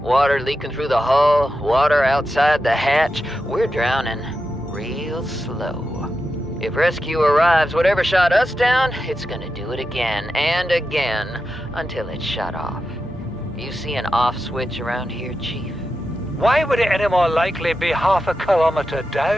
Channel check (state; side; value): normal; both; correlation 0.90